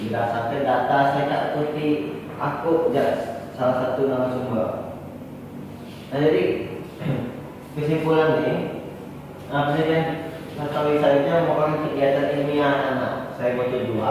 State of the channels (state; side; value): identical; both; correlation 1.00